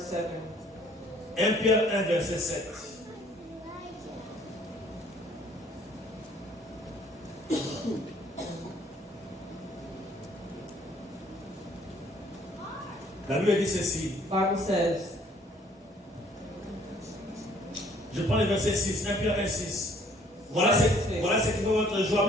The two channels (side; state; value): both; normal; correlation 0.60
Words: 7. 1 Pierre 1 verset 7. La Bible dit ceci. Bible says, Je prends le verset 6, 1 Pierre 1, 6. Voilà ce qui fait votre joie,